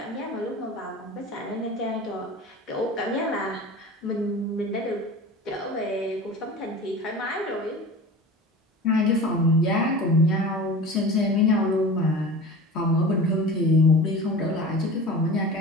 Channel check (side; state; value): both; normal; correlation 0.35